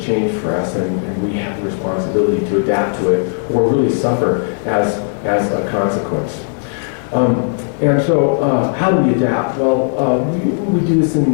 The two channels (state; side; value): silent; right; 63 dB below the other